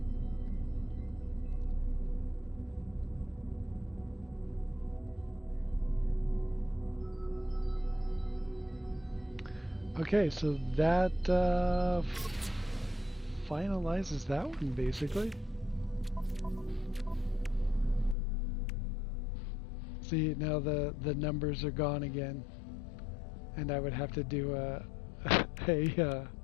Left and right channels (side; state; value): right; drops out; at 18.2 s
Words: Okay, so that finalizes that one, basically. See, now the numbers are gone again, and I would have to do a